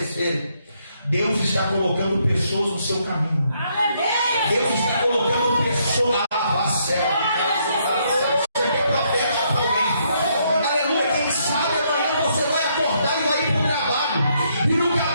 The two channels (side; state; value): both; inverted; correlation -0.73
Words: Deus está colocando pessoas no seu caminho. Deus está colocando pessoas a céu. Aleluia, quem sabe amanhã você vai acordar e vai ir para o trabalho. E no